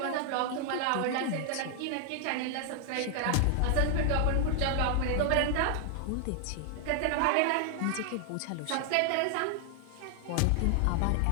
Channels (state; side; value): different; both; correlation 0.00